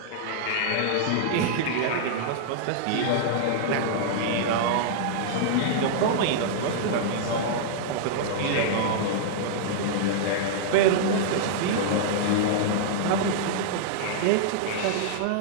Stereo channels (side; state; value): both; different; correlation -0.01